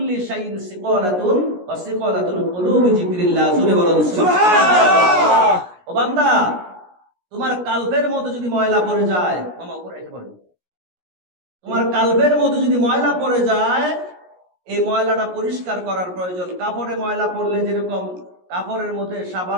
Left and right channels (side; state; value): left; late; 17 ms